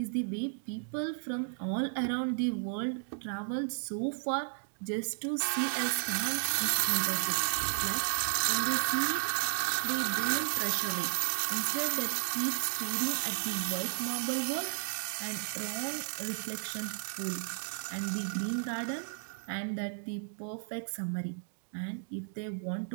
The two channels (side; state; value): left; silent; digital silence